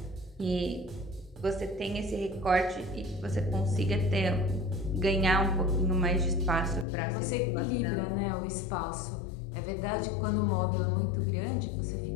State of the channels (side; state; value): right; drops out; at 6.9 s